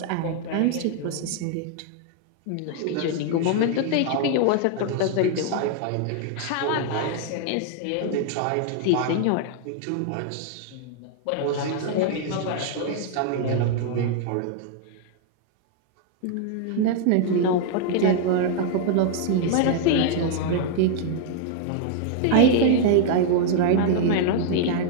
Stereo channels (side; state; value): both; different; correlation 0.00